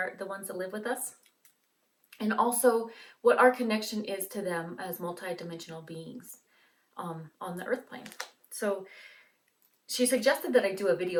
the ones that live with us, and also what our connection is to them as multidimensional beings on the earth plane. So she suggested that I do a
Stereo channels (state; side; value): identical; both; correlation 1.00